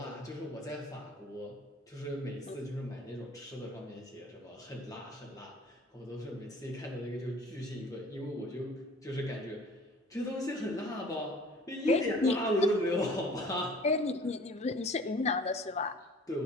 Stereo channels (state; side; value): normal; both; correlation 0.48